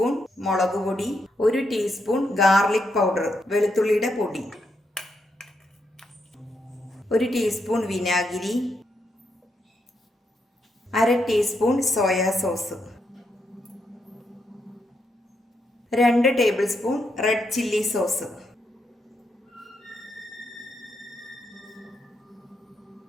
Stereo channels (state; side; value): normal; both; correlation 0.80